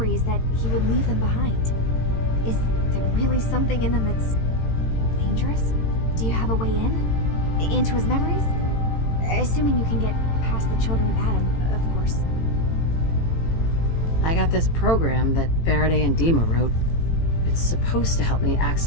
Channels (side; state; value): right; late; 18 ms